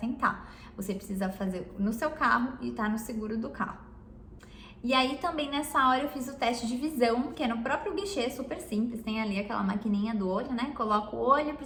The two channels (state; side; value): identical; both; correlation 1.00